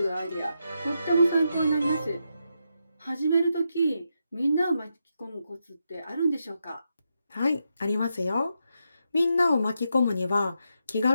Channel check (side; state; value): both; inverted; correlation -0.84